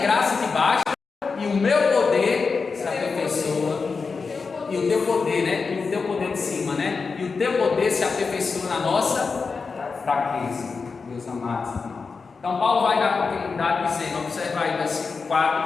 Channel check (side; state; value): right; quieter; 4.8 dB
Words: te basta e o meu poder se aperfeiçoa, e o teu poder, né? E o teu poder de cima, né? E o teu poder se aperfeiçoa na nossa fraqueza, meus amados irmãos. Então Paulo vai dar continuidade dizendo, observa aí versículo 4